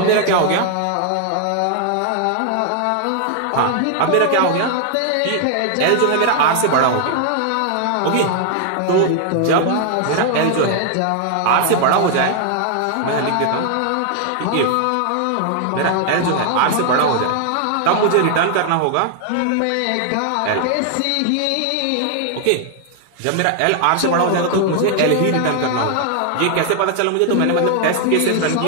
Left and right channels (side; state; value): both; different; correlation 0.00